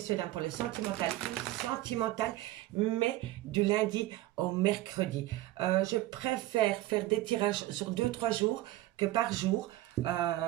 dames, pour le sentimental, mais du lundi au mercredi. Je préfère faire des tirages sur 2-3 jours que par jour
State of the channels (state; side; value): quieter; left; 16.5 dB